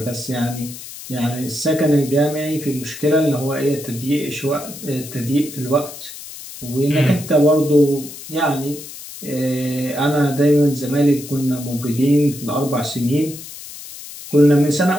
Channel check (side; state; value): left; noise; hiss, 13 dB below the sound